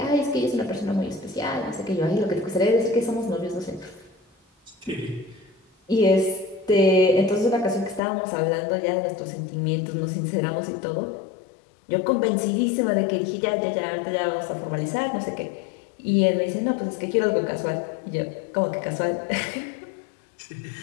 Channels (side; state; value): right; drops out; at 8.0 s